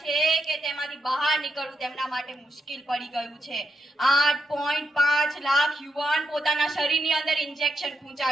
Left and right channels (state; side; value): normal; both; correlation 0.83